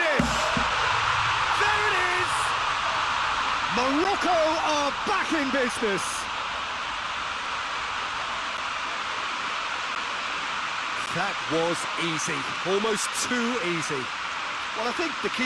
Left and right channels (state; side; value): identical; both; correlation 1.00